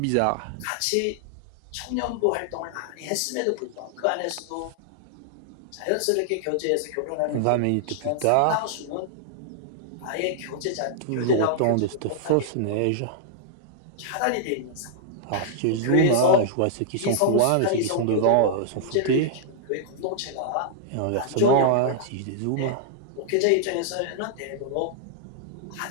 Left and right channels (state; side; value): different; both; correlation -0.01